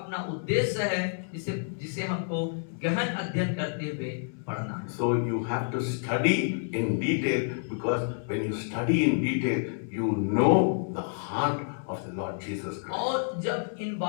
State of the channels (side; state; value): right; silent; 59 dB below the other